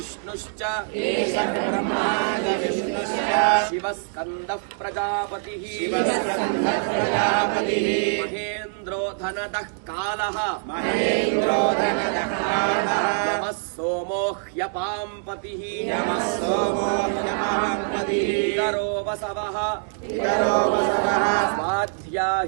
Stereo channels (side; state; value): left; silent; digital silence